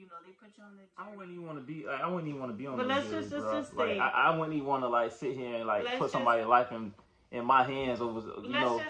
know they put you on the jury. I wouldn't even want to be. Like, I wouldn't even want to be on but the let's jury, just bro. Like, I wouldn't even want to like sit here and like put somebody's life in my hands over let's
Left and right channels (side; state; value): both; identical; correlation 1.00